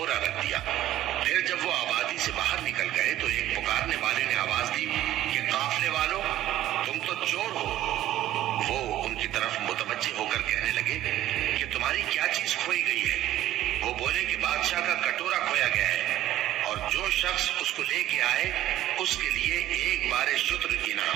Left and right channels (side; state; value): left; quieter; 13.7 dB